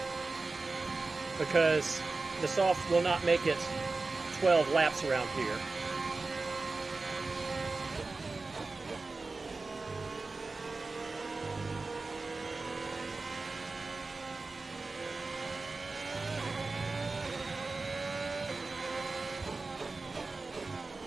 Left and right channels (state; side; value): quieter; left; 3.7 dB